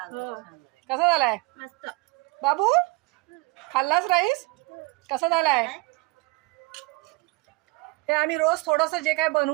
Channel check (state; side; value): quieter; left; 23.7 dB